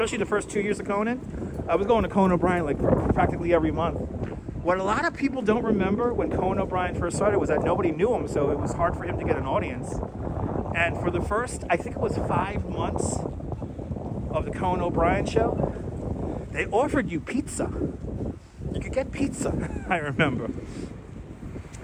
the first 2 years of Conan. I was going to Conan O'Brien like practically every month. What a lot of people don't remember when Conan O'Brien first started was that nobody knew him, so it was hard for him to get an audience. And for the first, I think it was 5 months of the Conan O'Brien show, they offered you pizza. You could get pizza, I remember.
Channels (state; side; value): identical; both; correlation 1.00